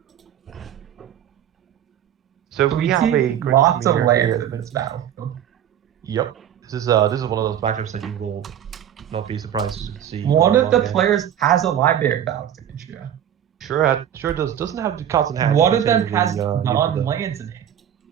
So we have a great lots of premiere lands here. in this battlefield. Yep, this is one of those matchups that you will not be surprised to see. One of the players has a library of Alexandria. Sure does. Doesn't have the cards in hand. One of them has non-lands in hand.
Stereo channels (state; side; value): quieter; left; 10.1 dB